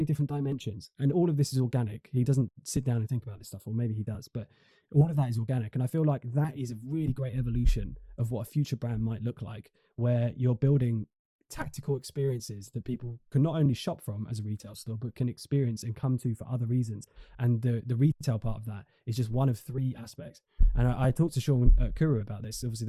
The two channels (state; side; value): identical; both; correlation 1.00